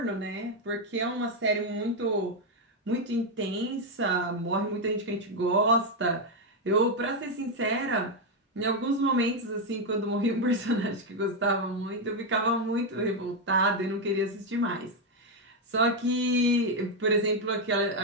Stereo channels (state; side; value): normal; both; correlation 0.04